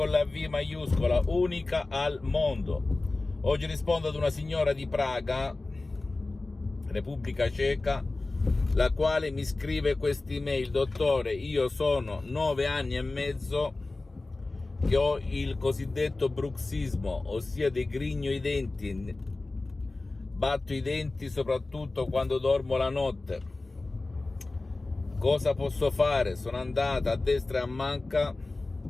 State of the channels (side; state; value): right; quieter; 3.2 dB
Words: la V maiuscola, unica al mondo. Oggi rispondo ad una signora di Praga, Repubblica Ceca, la quale mi scrive quest'email: dottore, io sono 9 anni e mezzo che ho il cosiddetto bruxismo, ossia degrigno i denti, batto i denti soprattutto quando dormo la notte. Cosa posso fare? Sono andata a destra e a manca,